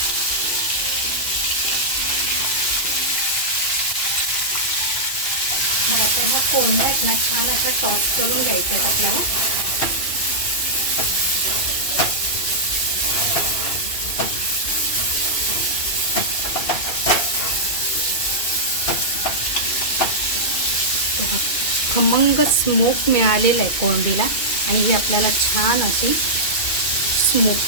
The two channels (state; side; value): late; right; 2.6 ms